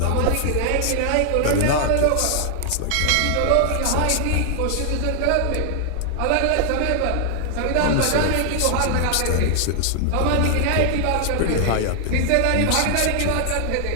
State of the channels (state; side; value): different; both; correlation 0.00